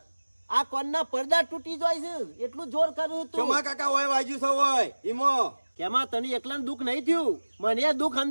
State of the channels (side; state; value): both; inverted; correlation -1.00